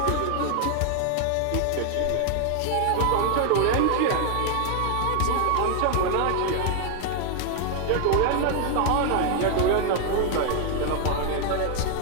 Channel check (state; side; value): different; both; correlation 0.00